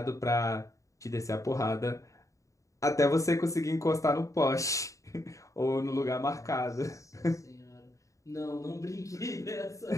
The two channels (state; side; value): late; right; 0.16 ms